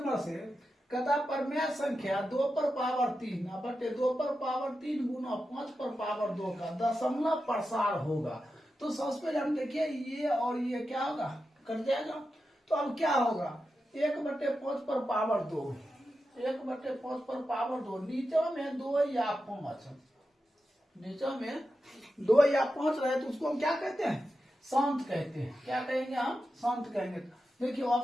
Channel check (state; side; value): normal; both; correlation 0.90